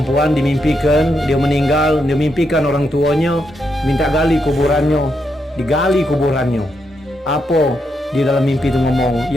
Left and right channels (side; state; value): both; normal; correlation 0.81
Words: dimimpikan, dia meninggal, dia mimpikan orang tuanya minta gali kuburannya, digali kuburannya. Apa di dalam mimpi itu ngomong,